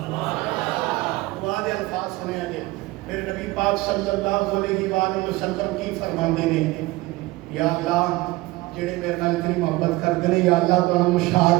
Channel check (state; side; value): quieter; left; 20.3 dB